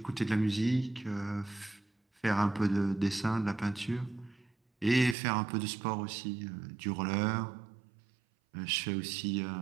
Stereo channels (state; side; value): drops out; left; at 5.2 s